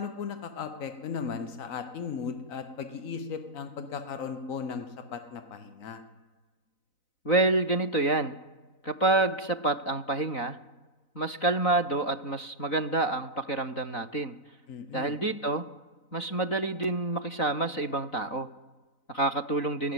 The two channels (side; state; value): right; late; 4.0 ms